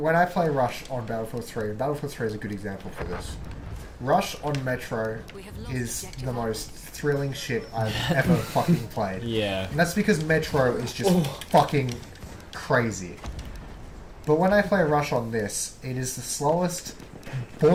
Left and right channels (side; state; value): both; identical; correlation 1.00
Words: I play Rush on Battlefield 3, and Battlefield 3 is a good example for this. Rush on Metro is the most thrilling shit I've ever fucking played. Yeah. And that's because Metro is just fucking crazy. But when I play Rush on this, it is the slowest,